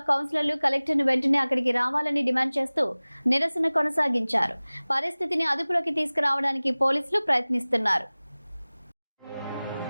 కౌన్సిలర్లు కలెక్టర్ను వెంటనే అక్కడికి రావాలని డిమాండ్ చేస్తూ నిరసన కొనసాగించారు. పరిస్థితిని అదుపులోకి తీసుకురావడానికి పోలీసులు ప్రయత్నిస్తున్నారు.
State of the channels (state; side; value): inverted; both; correlation -0.99